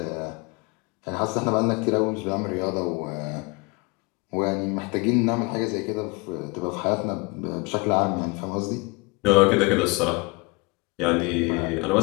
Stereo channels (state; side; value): quieter; right; 28.0 dB